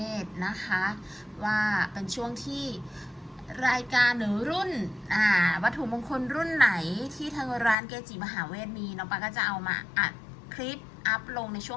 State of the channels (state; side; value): drops out; right; at 7.8 s